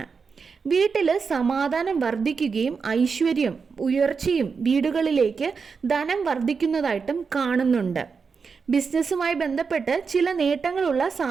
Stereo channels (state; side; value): quieter; left; 5.4 dB